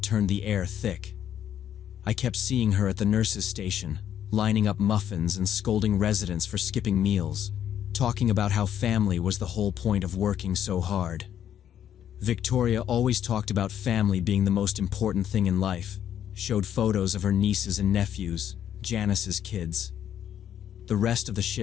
turned the air thick. I kept seeing her at the nurse's station, lining up muffins and scolding residents for skipping meals, talking about how family was the whole point of working so hard. Victoria always talked about family being the most important thing in life, showed photos of her nieces and nephews, Janice's kids. The rest of the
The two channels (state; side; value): quieter; right; 10.1 dB